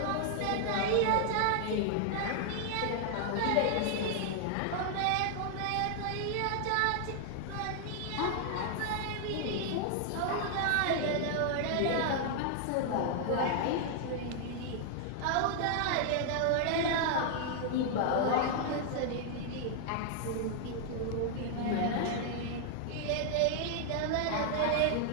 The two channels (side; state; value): both; different; correlation 0.00